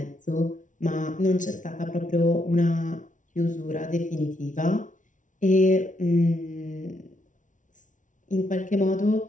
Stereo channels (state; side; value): late; right; 0.37 ms